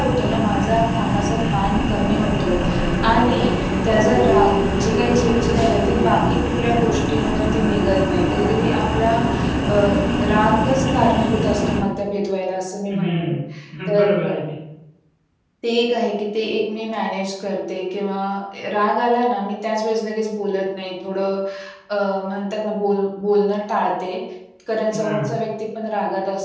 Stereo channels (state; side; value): identical; both; correlation 1.00